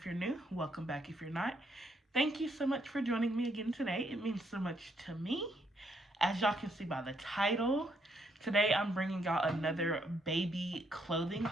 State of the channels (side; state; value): both; normal; correlation 0.73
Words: you're new, welcome back if you're not. Thank you so much for joining me again today. It means so much to me. As y'all can see by the title, today I'm bringing y'all another baby clothing